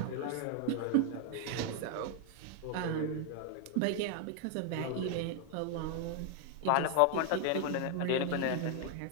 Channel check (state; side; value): different; both; correlation 0.00